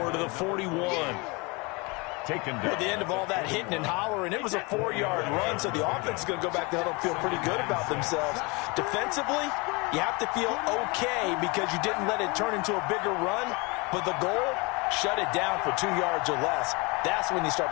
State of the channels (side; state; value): right; quieter; 27.7 dB